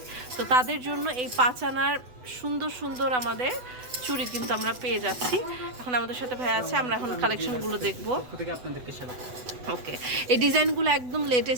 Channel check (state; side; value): late; left; 8.0 ms